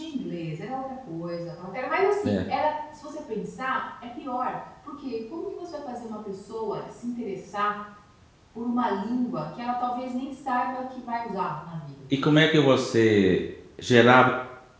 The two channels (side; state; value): both; identical; correlation 1.00